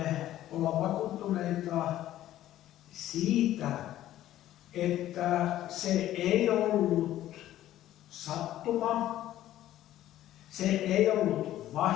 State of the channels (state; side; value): quieter; right; 13.4 dB